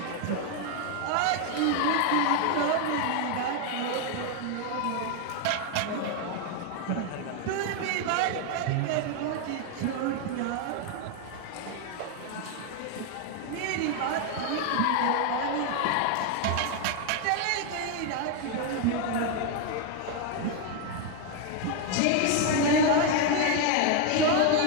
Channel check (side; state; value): both; different; correlation 0.01